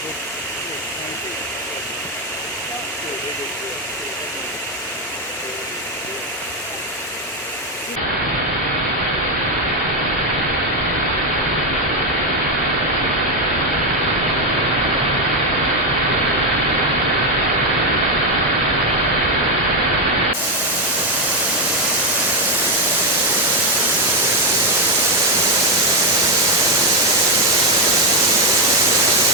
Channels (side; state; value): both; normal; correlation 0.06